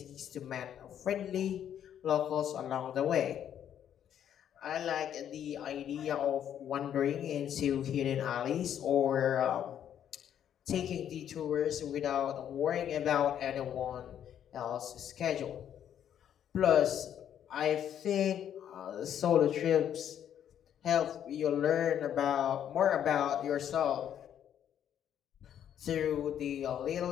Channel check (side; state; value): right; quieter; 9.8 dB